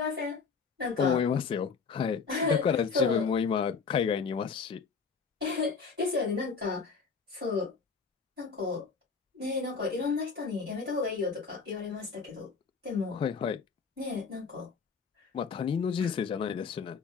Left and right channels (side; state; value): right; quieter; 5.3 dB